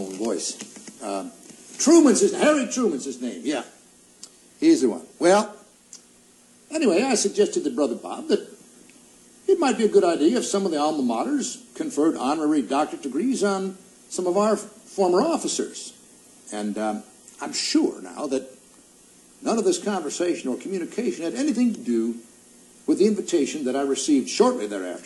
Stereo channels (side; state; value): both; identical; correlation 1.00